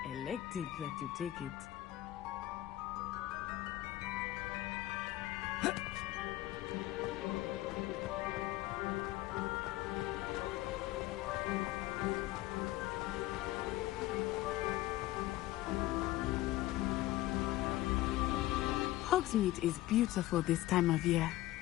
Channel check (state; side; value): quieter; right; 16.2 dB